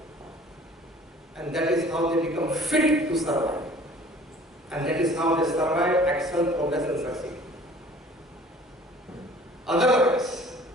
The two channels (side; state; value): both; normal; correlation 0.50